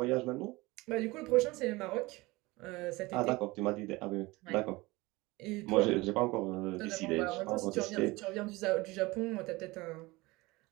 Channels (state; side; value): quieter; left; 22.0 dB